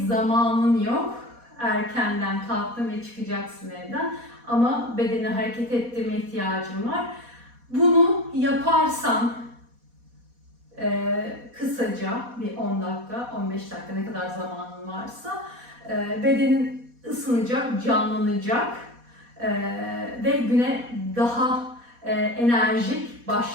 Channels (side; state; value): left; late; 4.1 ms